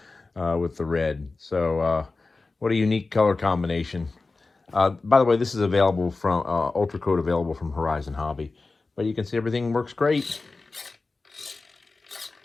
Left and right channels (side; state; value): right; quieter; 3.7 dB